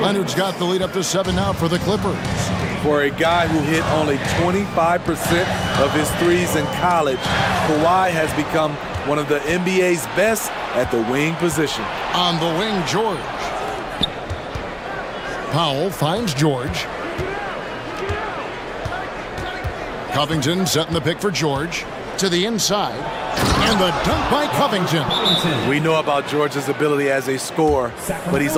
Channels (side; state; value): both; identical; correlation 1.00